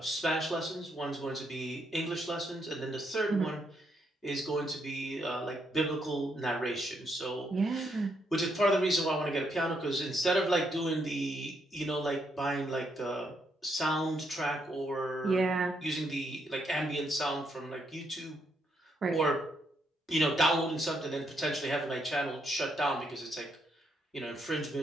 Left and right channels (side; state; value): both; normal; correlation 0.76